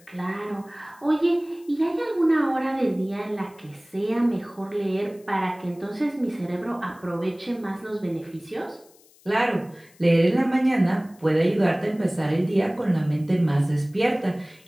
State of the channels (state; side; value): noise; left; hiss, 28 dB below the sound